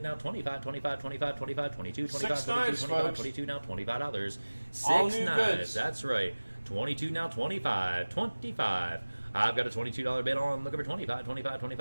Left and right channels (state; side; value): inverted; both; correlation -1.00